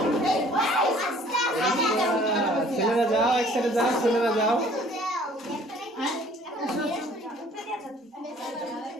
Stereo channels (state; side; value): normal; both; correlation 0.55